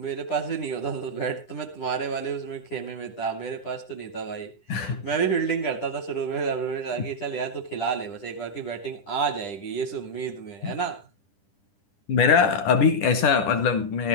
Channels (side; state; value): right; late; 10 ms